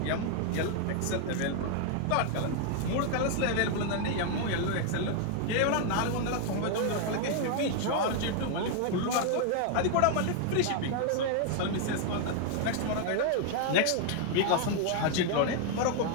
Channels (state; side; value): different; both; correlation 0.00